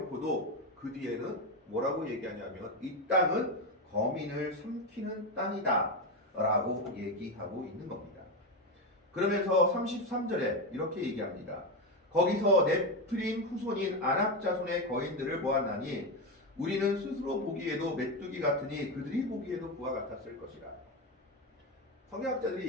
그 뒤에는 뭐라고 얘기하냐면 이 땅은 거민을 삼키는 땅이다 라고 얘기하고 있는 겁니다. 그러면서 33절에 이렇게 얘기합니다. 거기서 네프림 후손인 아낙 자손의 거인들을 보았나니 우리는 스스로 보기에도 메뚜기 같으니 그들이 보기에도 그와 같았을 것이라. 성경학자들이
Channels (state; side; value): normal; both; correlation 0.13